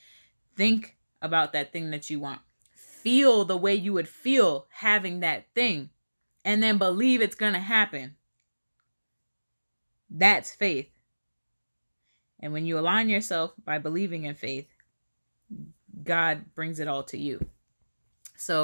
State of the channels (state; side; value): inverted; both; correlation -1.00